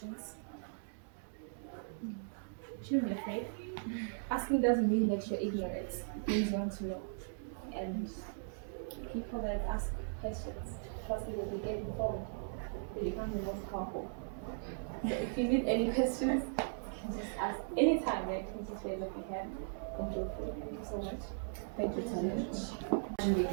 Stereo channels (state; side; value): silent; left; digital silence